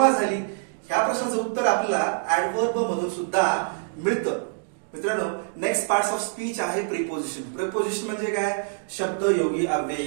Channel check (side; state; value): left; silent; digital silence